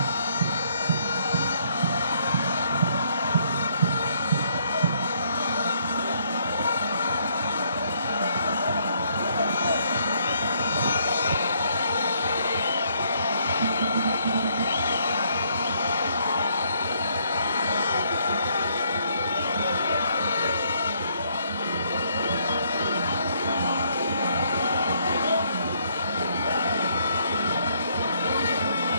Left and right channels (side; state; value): both; inverted; correlation -0.70